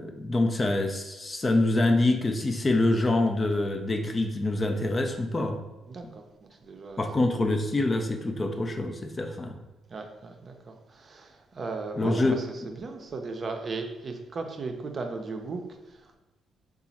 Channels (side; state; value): both; normal; correlation 0.89